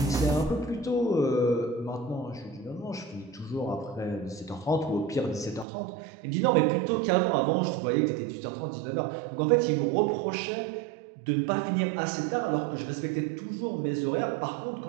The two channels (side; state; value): left; drops out; at 5.7 s